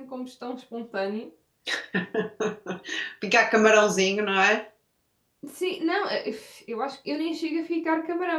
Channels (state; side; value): identical; both; correlation 1.00